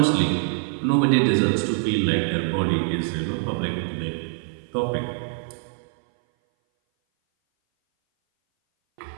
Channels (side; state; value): left; silent; 58 dB below the other